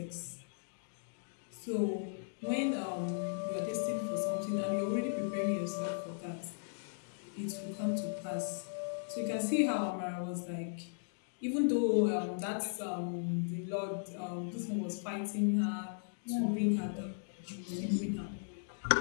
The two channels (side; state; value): right; silent; digital silence